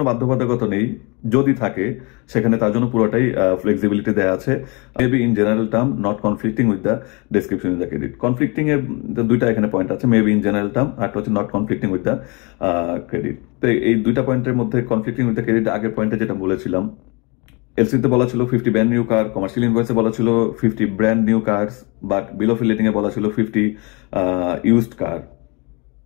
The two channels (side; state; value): right; quieter; 29.5 dB